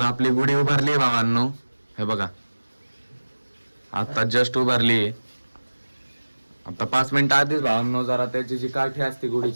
आपली गुढी उभारली भावांनो. हे बघा, आता जस्ट उभारली. आता 5 मिनिटं आधीच भावांनो जरा त्याची जी काठी असते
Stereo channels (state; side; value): inverted; both; correlation -1.00